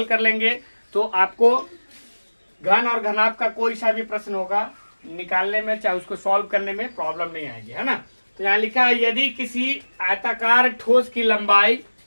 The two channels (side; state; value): both; inverted; correlation -1.00